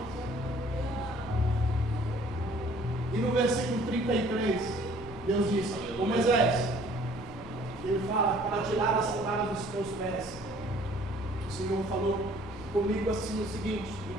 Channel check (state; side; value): normal; both; correlation 0.56